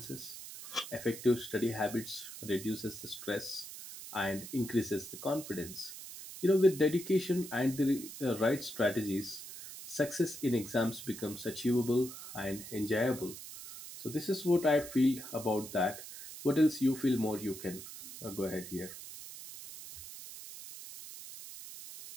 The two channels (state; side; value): noise; right; hiss, 12 dB below the sound